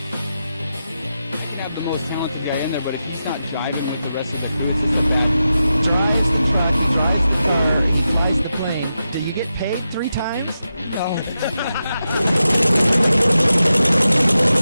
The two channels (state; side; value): inverted; both; correlation -0.90